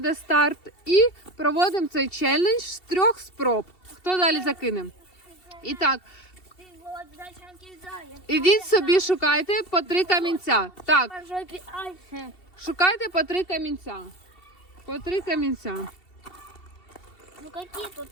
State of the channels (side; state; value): right; late; 2.7 ms